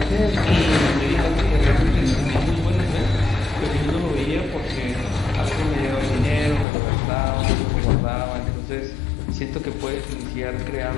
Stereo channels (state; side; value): drops out; right; at 6.7 s